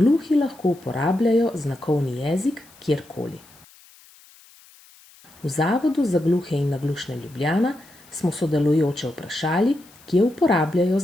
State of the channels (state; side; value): noise; left; hiss, 26 dB below the sound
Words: lahko uporabljajo znakovni jezik kjerkoli. V Zavodu za gluhe in naglušne Ljubljana smo sodelujoče vprašali, kje uporabljajo